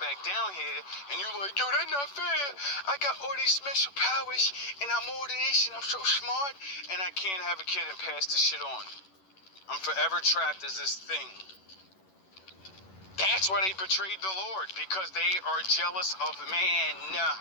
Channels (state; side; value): late; right; 11 ms